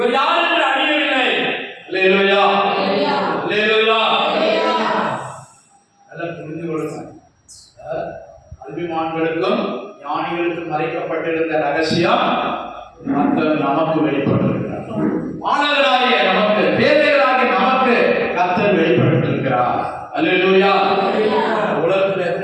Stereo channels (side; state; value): both; identical; correlation 1.00